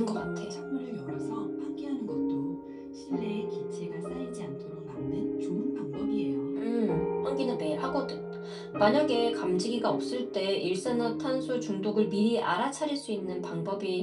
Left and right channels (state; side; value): identical; both; correlation 1.00